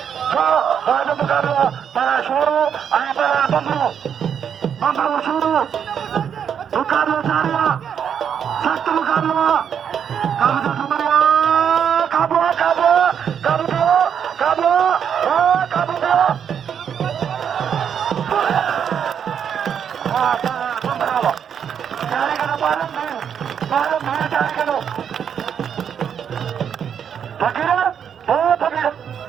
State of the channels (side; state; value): left; quieter; 8.0 dB